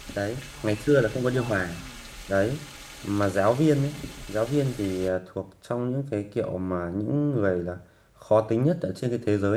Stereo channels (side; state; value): both; identical; correlation 1.00